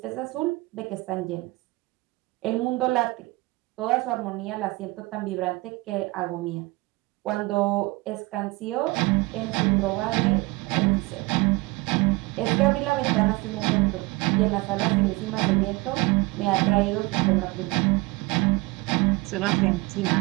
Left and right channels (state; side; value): quieter; left; 23.0 dB